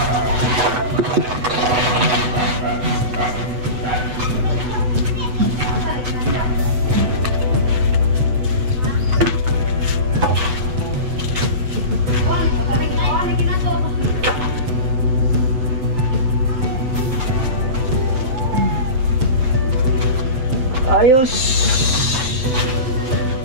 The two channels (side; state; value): left; late; 7.9 ms